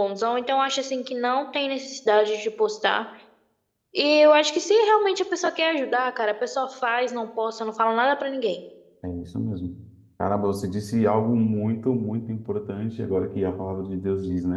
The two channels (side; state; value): both; identical; correlation 1.00